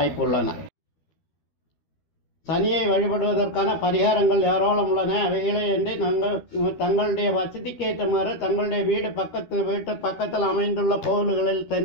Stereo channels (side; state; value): right; late; 12 ms